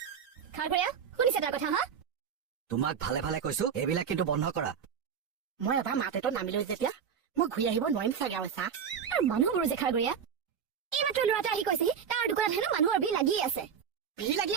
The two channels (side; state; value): left; quieter; 7.4 dB